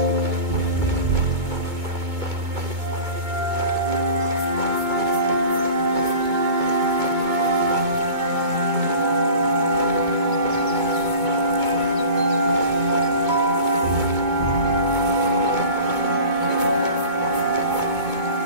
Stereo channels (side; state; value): left; late; 2.2 ms